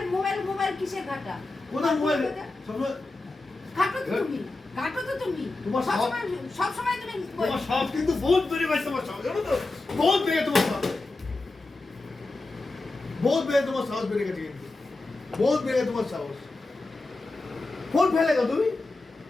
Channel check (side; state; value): right; quieter; 3.2 dB